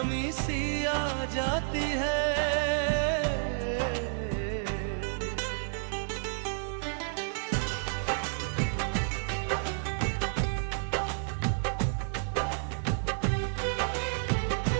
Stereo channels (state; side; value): silent; left; digital silence